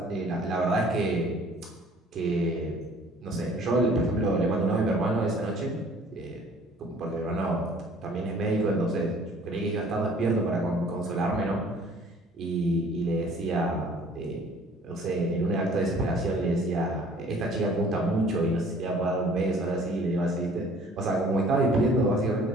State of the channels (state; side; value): normal; both; correlation 0.53